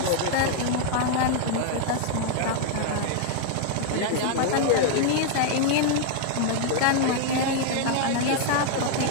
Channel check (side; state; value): both; different; correlation 0.00